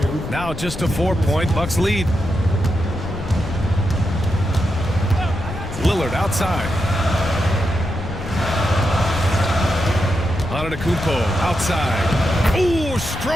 Now just a 4-point Bucks lead. Lillard outside. Antetokounmpo outside. Ooh,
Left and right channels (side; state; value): left; noise; rumble, 9 dB below the sound